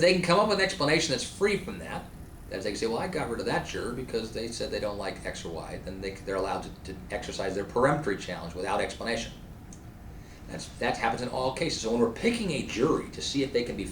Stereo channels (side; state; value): both; identical; correlation 1.00